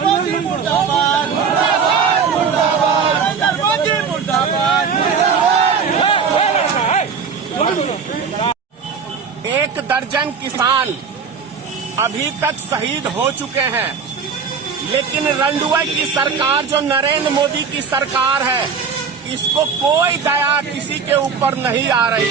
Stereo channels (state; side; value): quieter; left; 6.0 dB